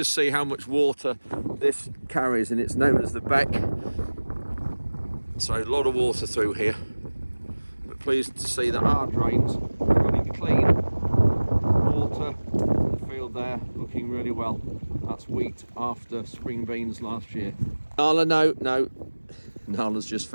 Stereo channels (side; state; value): both; inverted; correlation -1.00